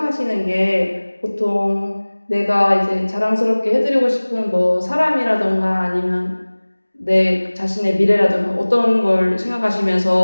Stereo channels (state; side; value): inverted; both; correlation -1.00